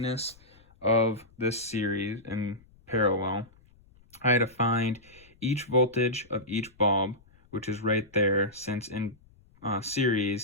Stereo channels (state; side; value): noise; left; rumble, 29 dB below the sound